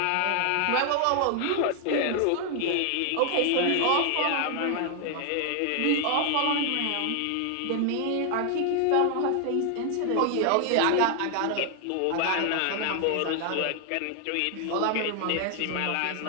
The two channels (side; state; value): both; different; correlation 0.00